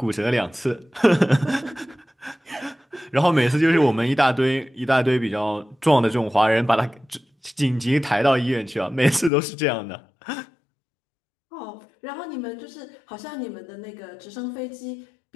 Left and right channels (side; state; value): right; drops out; at 9.3 s